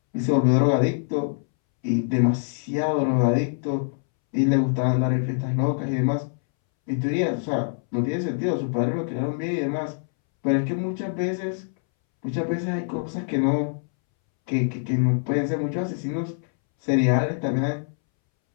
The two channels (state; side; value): silent; right; 62 dB below the other